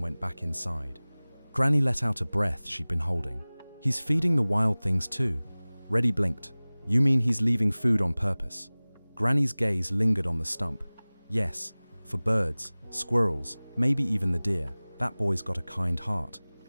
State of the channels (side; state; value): both; inverted; correlation -1.00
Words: went back inside. Granny let out a breath she'd been holding. He's feeding the wild things too. Reddy blinked. You mean he's leaving food on purpose? Granny's gaze lingered on the stump. Yes, for birds, squirrels, maybe even the deer. That boy's got a kind heart.